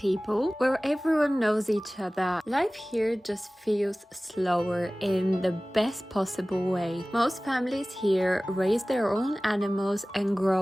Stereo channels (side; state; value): both; normal; correlation 0.98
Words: where everyone knows each other. Life here just feels slower in the best possible way. Most families here raise their own animals and